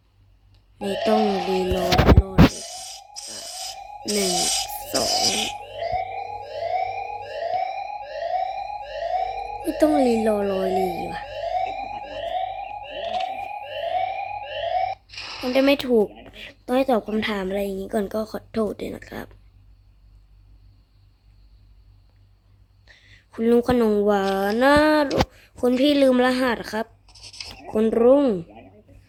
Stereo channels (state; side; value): identical; both; correlation 1.00